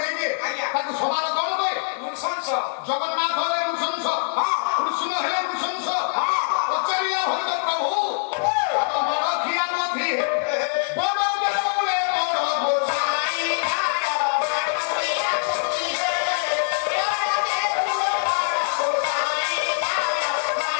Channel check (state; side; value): silent; right; digital silence